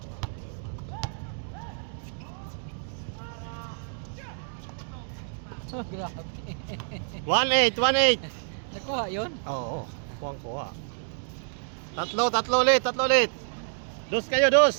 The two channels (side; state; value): left; silent; digital silence